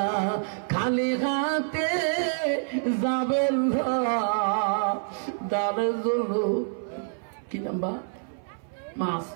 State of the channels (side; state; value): left; silent; 59 dB below the other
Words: খালি হাতে যাবেন না দানের জন্য কি নাম্বার মা